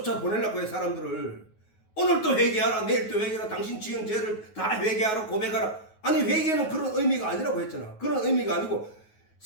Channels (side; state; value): right; late; 9.4 ms